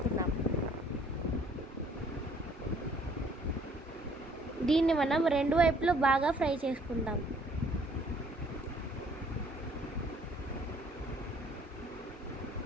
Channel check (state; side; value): normal; both; correlation 0.60